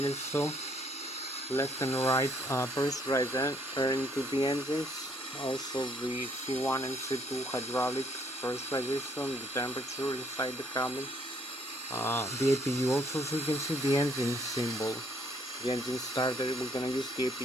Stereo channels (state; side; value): normal; both; correlation 0.67